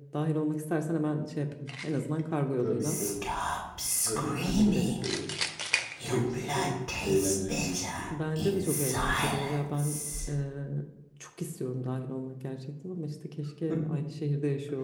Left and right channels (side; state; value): both; identical; correlation 1.00